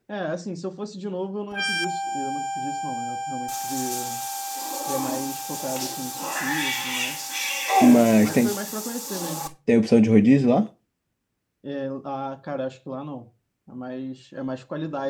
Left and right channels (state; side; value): identical; both; correlation 1.00